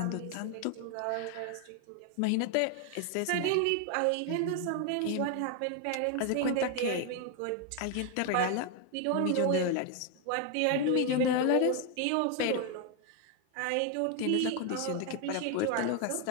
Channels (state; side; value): different; both; correlation 0.01